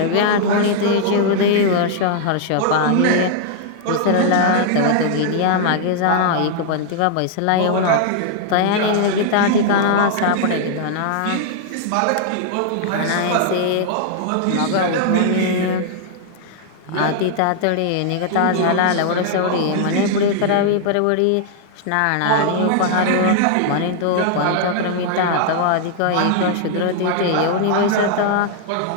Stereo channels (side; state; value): both; different; correlation -0.01